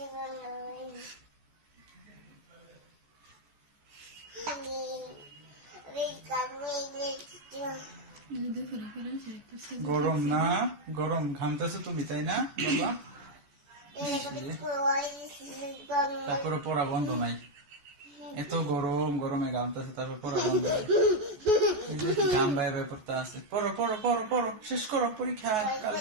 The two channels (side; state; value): left; late; 14 ms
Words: গরম না? গরম, ঘামতেছো তুমি, তাই না বাবা? তারপরে পড়া বন্ধ নাই। এত গরম, গরমে ঘামতেছে, তারপর পড়া বন্ধ নাই। গাম বাইরে বাইরে পড়তে আছে। পড়ো পড়ো পড়ো পড়ো, শেষ করো পরীক্ষা